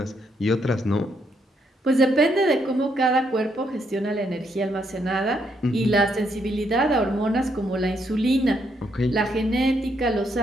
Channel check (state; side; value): normal; both; correlation 0.75